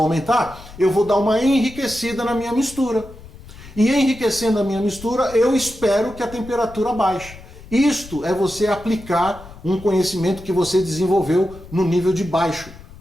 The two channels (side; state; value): left; noise; rumble, 18 dB below the sound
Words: a aumentar, eu vou dar uma enriquecida na minha mistura. E enriquecendo a minha mistura, eu espero que a temperatura baixe. Isto é você aplicar um conhecimento que você desenvolveu no nível de baixo